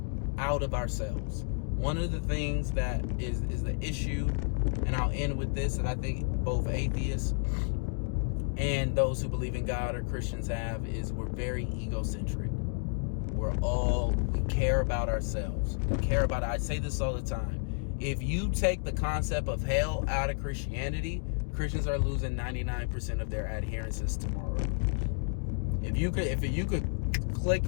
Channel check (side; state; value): right; silent; 57 dB below the other